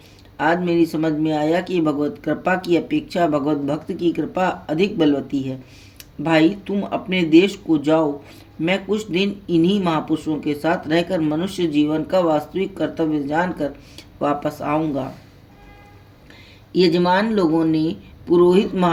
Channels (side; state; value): both; identical; correlation 1.00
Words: आज मेरी समझ में आया कि भगवत कृपा की अपेक्षा भगवत भक्त की कृपा अधिक बलवती है। भाई, तुम अपने देश को जाओ, मैं कुछ दिन इन्हीं महापुरुषों के साथ रहकर मनुष्य जीवन का वास्तविक कर्तव्य जानकर वापस आऊँगा। यजमान लोगों ने पुरोहित